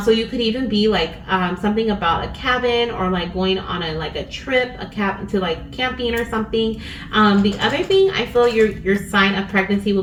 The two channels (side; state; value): both; identical; correlation 1.00